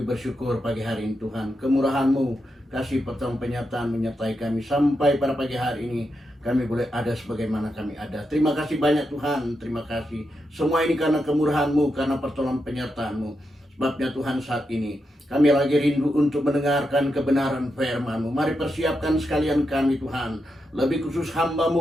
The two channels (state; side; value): normal; both; correlation 0.85